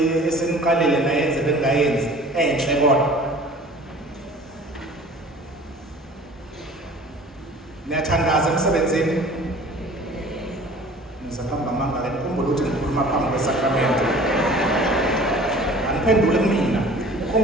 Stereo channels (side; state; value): both; normal; correlation 0.46